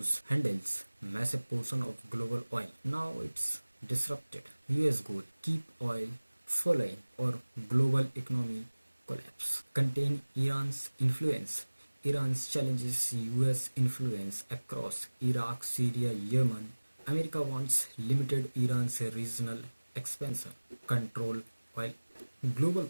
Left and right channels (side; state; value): both; inverted; correlation -1.00